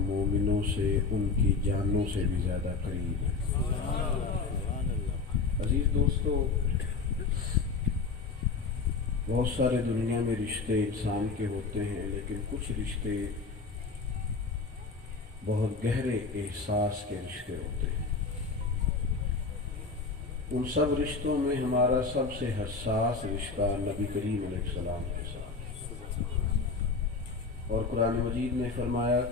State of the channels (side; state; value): right; quieter; 4.4 dB